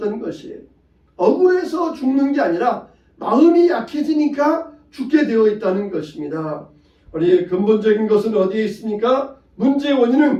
것이에요. 억울해서 죽는 게 아니라 마음이 약해지니까 죽게 되어 있다는 것입니다. 우리 근본적인 것은 어디에 있습니까? 문제의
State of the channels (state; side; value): identical; both; correlation 1.00